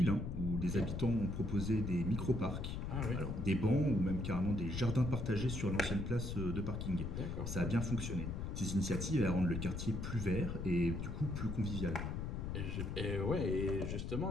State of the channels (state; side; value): noise; left; rumble, 4 dB below the sound